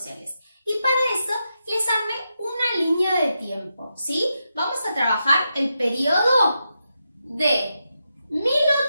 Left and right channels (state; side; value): inverted; both; correlation -0.86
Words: y para eso les armé una línea de tiempo, ¿sí? Vamos a trabajar el periodo de